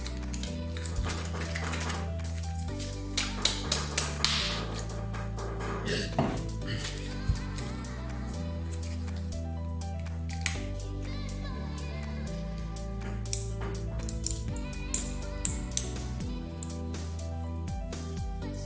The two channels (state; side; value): identical; both; correlation 1.00